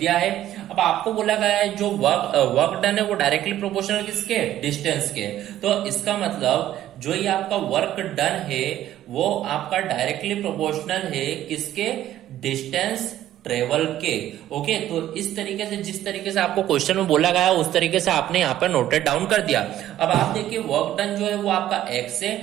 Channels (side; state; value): left; quieter; 12.8 dB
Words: है। अब आपको बोला गया है जो वर्क डन है वो डायरेक्टली प्रोपोर्शनल किसके, डिस्टेंस के। तो इसका मतलब जो ये आपका वर्क डन है वो आपका डायरेक्टली प्रोपोर्शनल है किसके, डिस्टेंस ट्रेवल के। ओके, तो इस तरीके से जिस तरीके से आपको क्वेश्चन में बोला गया उस तरीके से आपने यहाँ पर नोटेड डाउन कर दिया। अब आप देखिए वर्क डन जो है वो आपका x है,